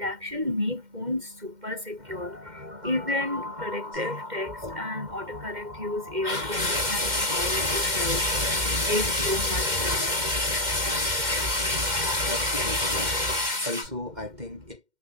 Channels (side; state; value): left; late; 2.1 ms